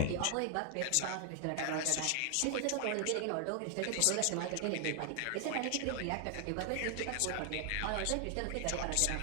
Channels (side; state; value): both; different; correlation 0.00